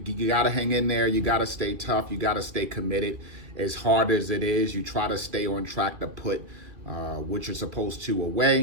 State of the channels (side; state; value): left; late; 2.3 ms